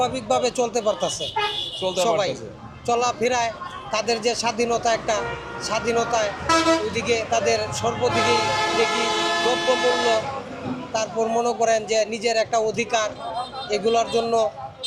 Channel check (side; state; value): both; identical; correlation 1.00